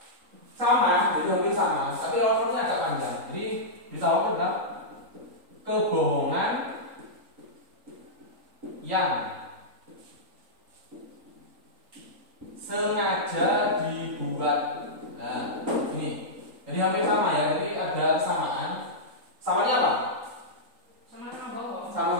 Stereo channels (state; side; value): late; left; 3.8 ms